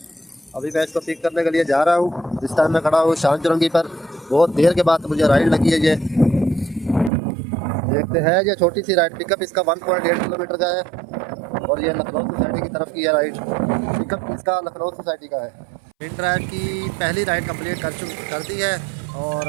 अभी मैं इसको पिक करने के लिए जा रहा हूँ। इस टाइम मैं खड़ा हूँ शान चुरंगी पर। बहुत देर के बाद मुझे राइड लगी है ये। देखते हैं, ये छोटी सी राइड पिकअप इसका 1.8 किलोमीटर का है और ये लखनऊ सोसाइटी की तरफ की है राइड। पिकअप इसका लखनऊ सोसाइटी का है। इन ड्राइव की पहली राइड कंप्लीट कर दी है और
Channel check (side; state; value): left; drops out; at 7.1 s